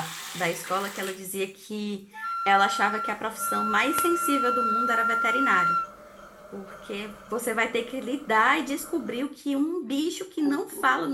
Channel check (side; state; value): both; identical; correlation 1.00